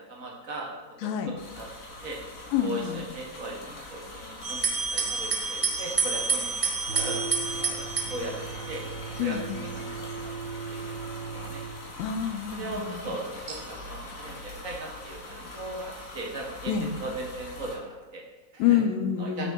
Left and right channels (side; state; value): right; late; 4.0 ms